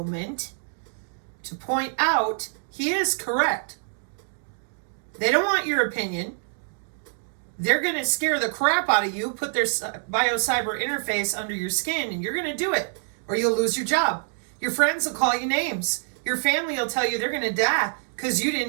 to point out he is correct. They don't want your opinion. They're going to scare the crap out of you, put their bio-cyber interface under your skin, and you're going to do it, or you'll lose your job. Your friends will call you names. Your family will tell you they're going to die because you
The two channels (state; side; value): silent; left; digital silence